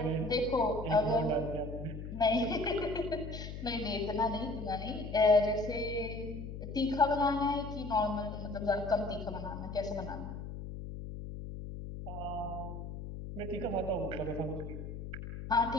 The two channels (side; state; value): left; noise; hum, 8 dB below the sound